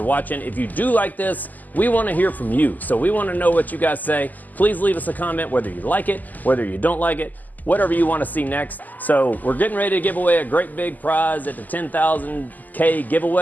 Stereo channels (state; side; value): late; right; 0.083 ms